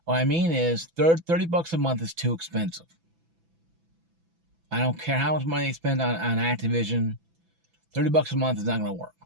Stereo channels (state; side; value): late; left; 6.0 ms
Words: What I mean is $30 a month is too expensive. I don't care how much money they spend on Activision. $30 a month is not going to work.